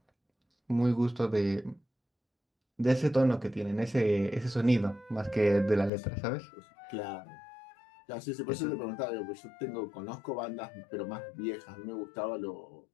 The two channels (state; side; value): drops out; right; at 5.9 s